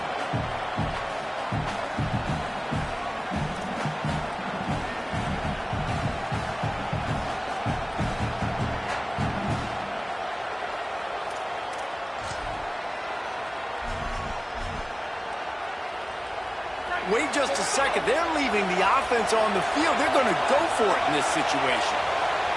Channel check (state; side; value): identical; both; correlation 1.00